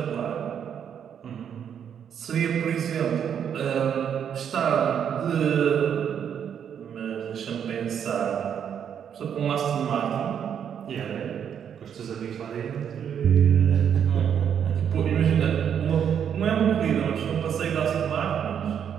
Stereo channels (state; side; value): quieter; left; 8.4 dB